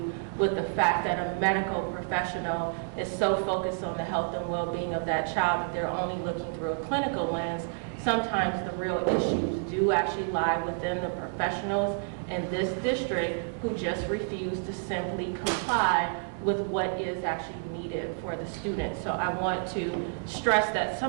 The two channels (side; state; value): left; silent; digital silence